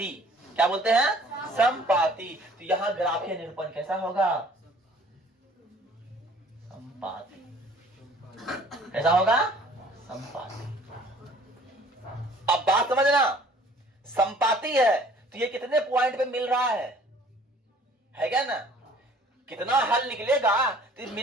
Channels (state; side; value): normal; both; correlation 0.53